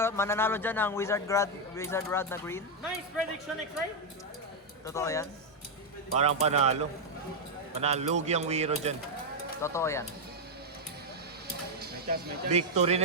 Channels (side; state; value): both; normal; correlation 0.00